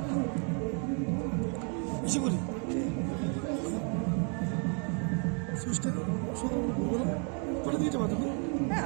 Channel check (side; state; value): left; quieter; 39.2 dB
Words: বেশি কৰি সুইচটা সকালবেলা কৰে দিতে পাৰো তুমি